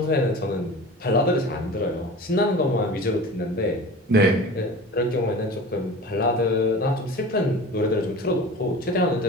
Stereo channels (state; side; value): normal; both; correlation 0.36